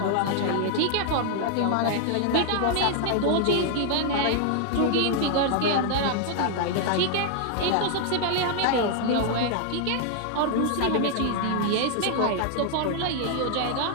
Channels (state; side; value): different; both; correlation 0.00